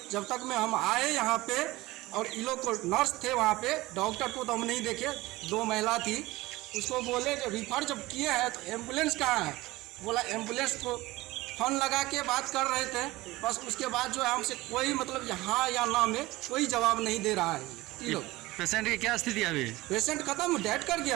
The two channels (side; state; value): left; quieter; 19.4 dB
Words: जब तक में हम आए यहाँ पे और इन लोग को नर्स थे वहाँ पे, डॉक्टर को तो हम नहीं देखे, 2 महिला थी, उसको बोले कि रिफर जब किए हैं तो एम्बुलेंस कहाँ है? बोला एम्बुलेंस को फ़ोन लगा के बात कर रहे थे, बस उसके बाद जो है हमसे कोई यहाँ या ना में कोई जवाब नहीं दे रहा है ये लोग। पेशेंट की क्या स्थिति है अभी? पेशेंट खत्म, डेड कर